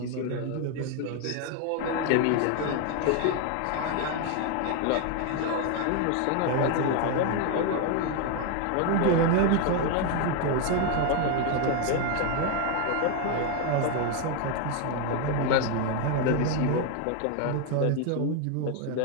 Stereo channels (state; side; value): different; both; correlation 0.01